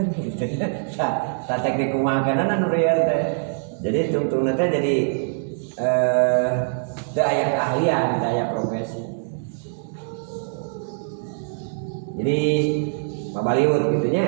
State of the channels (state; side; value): silent; left; 63 dB below the other